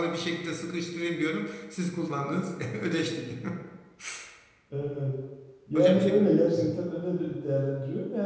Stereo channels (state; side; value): identical; both; correlation 1.00